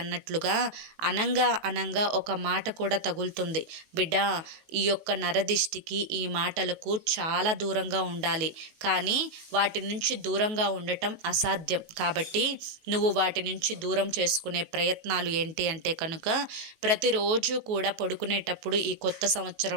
అనంగా ఒక మాట కూడా తగులుతుంది. బిడ్డ, ఈ యొక్క నరదిష్టికి, ఈ మాటలకు చాలా దూరంగా ఉండాలి. కానీ వాటి నుంచి దూరంగా ఉండటం అసాధ్యం. కాబట్టి నువ్వు వాటి నుంచి దూరం చేసుకునే ప్రయత్నాలు ఏంటి అంటే కనుక ప్రతిరోజు కూడా పడుకునేటప్పుడు ఈ కొత్త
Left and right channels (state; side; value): late; left; 19 ms